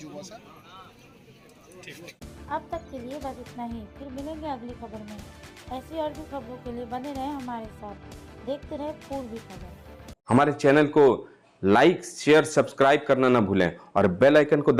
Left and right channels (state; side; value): identical; both; correlation 1.00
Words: বসা। अब तक के लिए बस इतना ही। फिर मिलेंगे अगली खबर में। ऐसी और भी खबरों के लिए बने रहें हमारे साथ। देखते रहे पूर्वी खबर। हमारे चैनल को लाइक, शेयर, सब्सक्राइब करना ना भूलें और बेल आइकन को